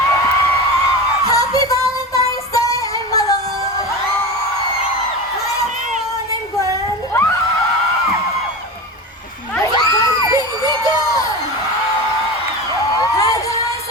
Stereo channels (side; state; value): both; normal; correlation 0.26